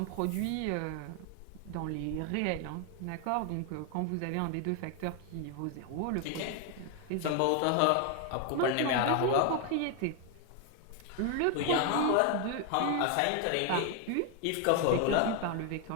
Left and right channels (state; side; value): different; both; correlation 0.01